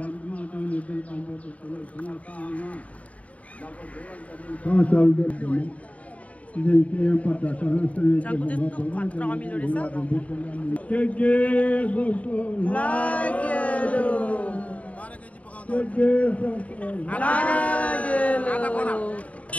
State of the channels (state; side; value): late; right; 0.068 ms